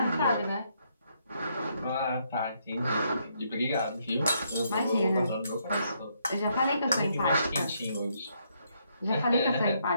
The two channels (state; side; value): inverted; both; correlation -0.74